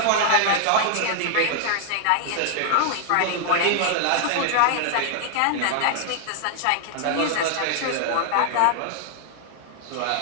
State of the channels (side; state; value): both; different; correlation -0.01